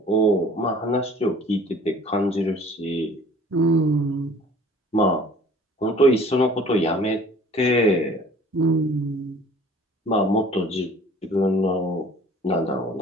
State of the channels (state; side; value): normal; both; correlation 0.50